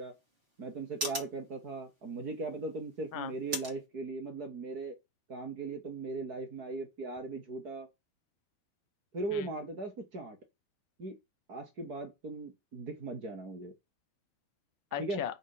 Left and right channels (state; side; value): late; left; 4.6 ms